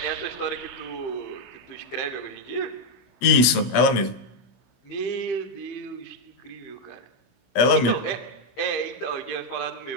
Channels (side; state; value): right; late; 17 ms